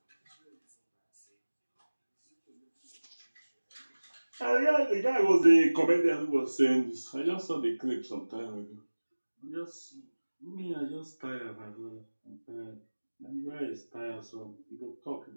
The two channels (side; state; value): both; inverted; correlation -1.00